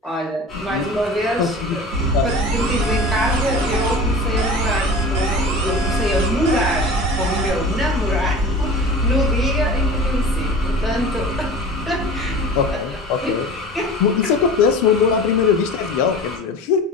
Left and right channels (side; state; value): both; normal; correlation 0.37